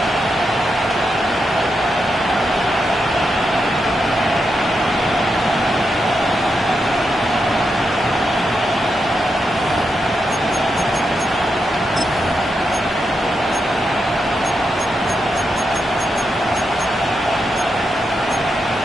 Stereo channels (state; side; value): normal; both; correlation 0.85